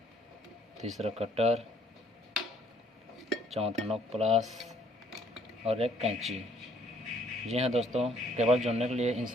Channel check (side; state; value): both; normal; correlation 0.64